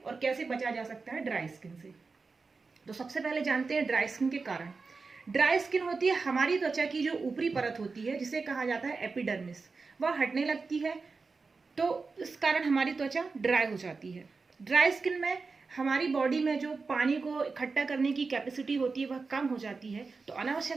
और कैसे बचा जा सकता है ड्राई स्किन से। तो सबसे पहले जानते हैं ड्राई स्किन के कारण। ड्राई स्किन होती है हमारी त्वचा की जो ऊपरी परत होती है, जिसे कहा जाता है एपिडर्मिस, वह हटने लगती है। तो इस कारण हमारी त्वचा ड्राई हो जाती है। ड्राई स्किन में हमारी बॉडी में जो पानी को इकट्ठा करने की कैपेसिटी होती है वह कम हो जाती है, तो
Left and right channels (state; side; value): quieter; left; 4.4 dB